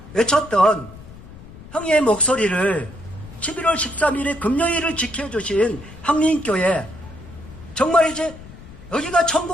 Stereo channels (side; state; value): left; noise; rumble, 17 dB below the sound